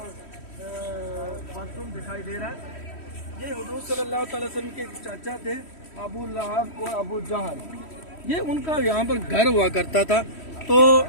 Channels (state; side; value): late; right; 3.1 ms